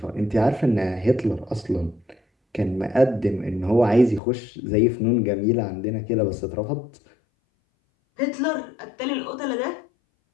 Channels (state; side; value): drops out; right; at 4.2 s